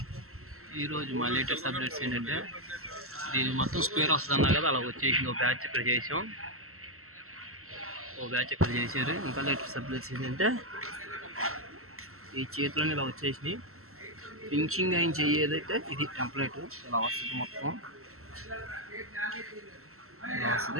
ఈరోజు మా లేటెస్ట్ అప్డేట్స్ ఏంటంటే దీని మొత్తం స్క్వేర్ వస్తుంది అన్నా కదా, అలా వచ్చేసింది. ఒక బ్యాచ్ ఇక్కడ చేసాం, ఓ బ్యాచ్ ఇక్కడ చేశారు. ఇంకా లేటెస్ట్ అప్డేట్స్ ఏంటంటే ఈ చేతిలోనే ఇలా వచ్చేసినాయి. ఫినిషింగ్ అయిన చెయ్యేదైతే ఇది టెంప్లెట్ ఇలా వస్తుంది, మొత్తం ఇలా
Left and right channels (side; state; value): left; late; 0.63 ms